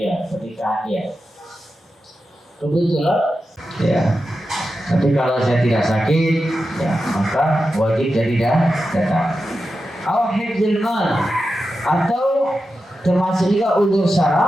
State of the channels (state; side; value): normal; both; correlation 0.91